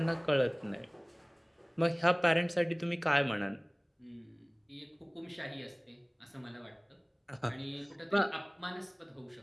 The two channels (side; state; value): both; identical; correlation 1.00